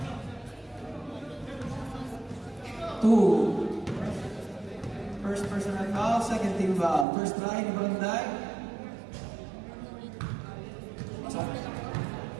2. First personal foul, second team foul. First try ni Buranday. Pasok.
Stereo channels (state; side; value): drops out; left; at 7.1 s